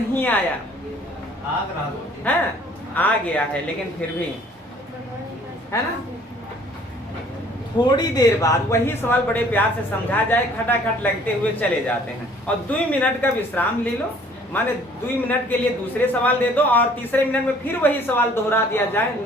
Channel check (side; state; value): both; normal; correlation 0.56